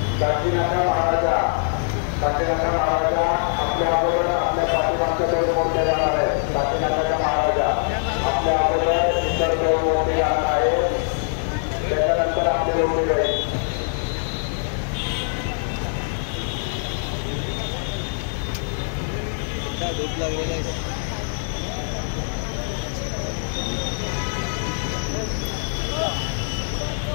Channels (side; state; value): right; silent; 63 dB below the other